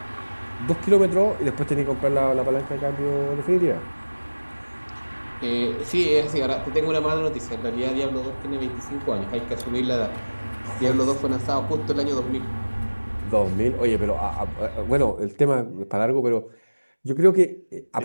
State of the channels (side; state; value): both; inverted; correlation -1.00